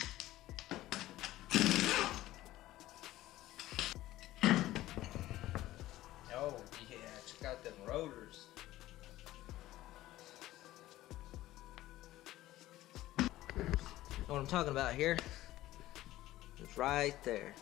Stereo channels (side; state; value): right; quieter; 15.7 dB